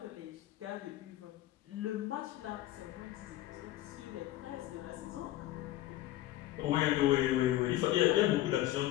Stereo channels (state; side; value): quieter; right; 14.8 dB